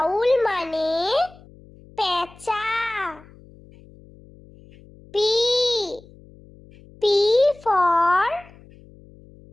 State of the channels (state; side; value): noise; left; hum, 24 dB below the sound